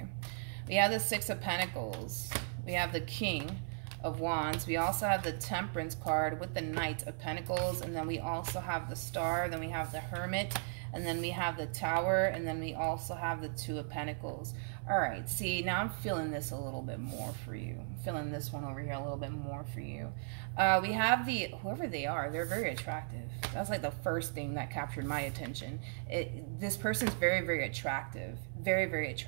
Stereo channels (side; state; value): left; silent; 53 dB below the other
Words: We have the Six of Pentacles. We have the King of Wands. We also have the Temperance card with the Knight of Pentacles, and then we also have the Star, then we have the Hermit, and then we have the Tower, and then we also have the Two of Pentacles. All right, see, now I'm feeling this a little bit more for you. I'm feeling this one over here a little bit more for you. We have the, whoever they are, they're very attractive. That's like the first thing that captured my attention. This person's very, very attractive. Very, very